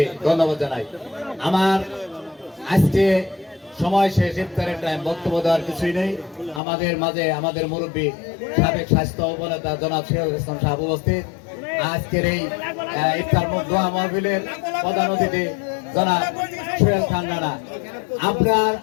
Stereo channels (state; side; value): drops out; right; at 6.6 s